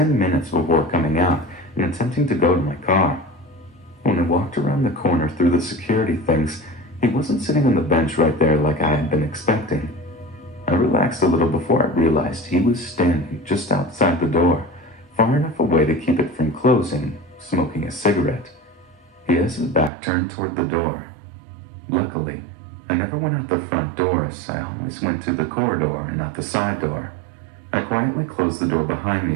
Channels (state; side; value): drops out; left; at 19.9 s